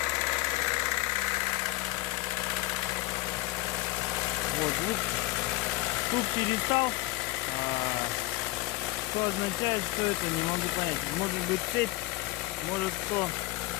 Вот звук перестал. Что означает, что это, не могу понять. Может быть цепь, может кто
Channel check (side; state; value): right; quieter; 19.3 dB